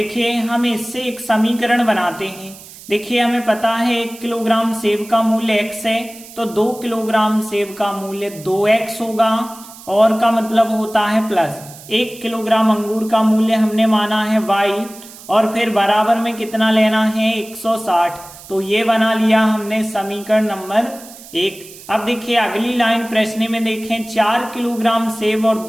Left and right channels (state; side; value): noise; right; hiss, 18 dB below the sound